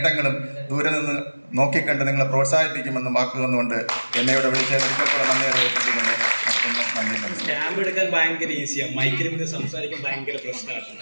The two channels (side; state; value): both; inverted; correlation -1.00